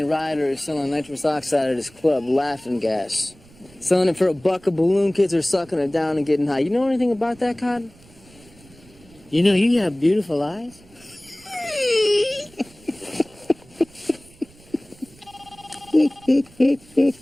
Ryder is selling nitrous oxide at his club, Laughing Gas. Selling it for $1 a balloon. Kids are sucking it down and getting high. You know anything about that, Cotton? You know, you have beautiful eyes.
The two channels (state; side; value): noise; right; rumble, 25 dB below the sound